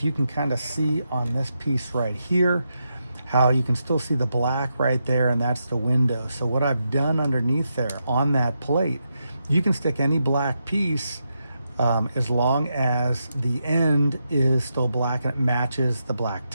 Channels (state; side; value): inverted; both; correlation -0.85